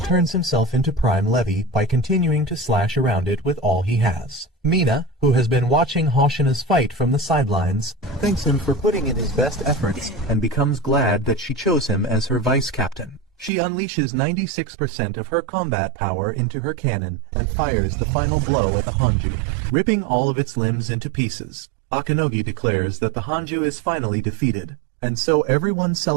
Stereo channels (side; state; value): left; drops out; at 13.5 s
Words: turns himself into Prime Levy by continuing to slash around it with all he has. Mina, who has been watching Hoshina's fight from the sidelines, thanks him for putting in his best efforts and becomes glad that she chose him as her vice captain. She unleashes 96% of her combat power into her cannon and fires the final blow at the Hanju, ripping all of its limbs into pieces. Akanogi declares that the Hanju is finally defeated, and so everyone